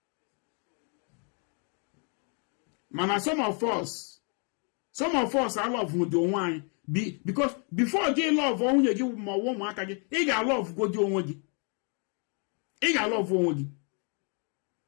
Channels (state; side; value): quieter; right; 39.0 dB